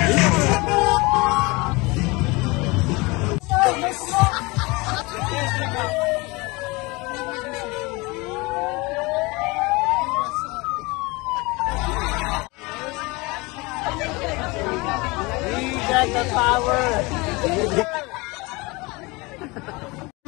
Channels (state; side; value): quieter; right; 24.9 dB